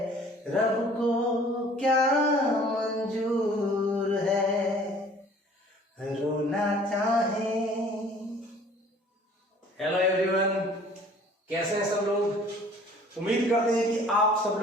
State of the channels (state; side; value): normal; both; correlation 0.52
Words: रब को क्या मंजूर है, रोना चाहे। हेलो एवरीवन, कैसे हैं सब लोग? उम्मीद करते हैं कि आप सब